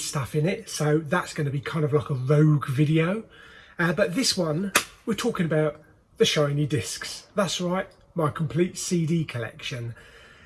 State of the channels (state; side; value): identical; both; correlation 1.00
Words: in it, so that's going to be kind of like a rogue video. But this one, we're talking about the shiny discs. That's right, my complete CD collection.